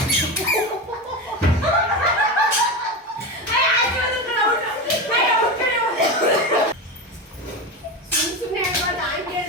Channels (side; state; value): both; normal; correlation 0.20